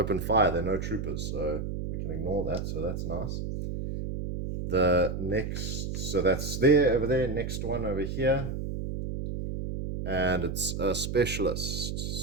fire. There are no troopers, so we can ignore that. So that's nice. The next, so that's there, over there. Next one over here. And it's a specialist.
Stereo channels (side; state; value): right; noise; hum, 4 dB below the sound